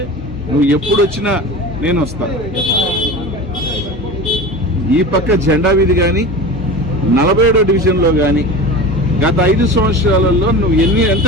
నువ్వు ఎప్పుడు వచ్చినా నేను వస్తాను. ఈ పక్క జెండా వీధి కానీ 47వ డివిజన్లో కానీ గత 5 సంవత్సరాలలో నువ్వు ఎంత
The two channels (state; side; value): normal; both; correlation 0.32